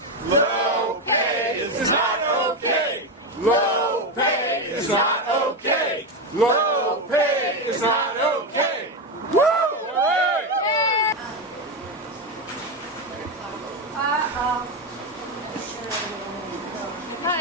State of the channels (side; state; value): both; normal; correlation 0.11